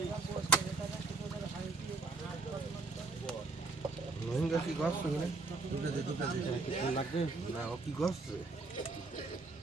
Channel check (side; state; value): left; quieter; 3.6 dB